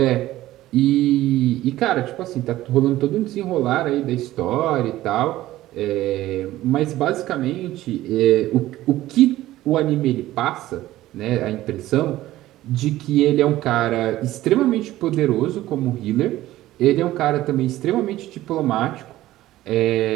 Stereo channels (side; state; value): left; quieter; 15.4 dB